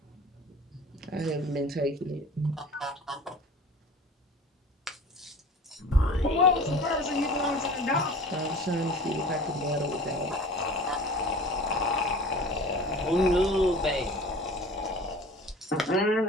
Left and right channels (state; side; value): normal; both; correlation 0.41